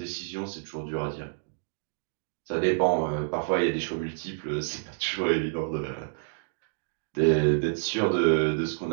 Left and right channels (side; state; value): left; silent; digital silence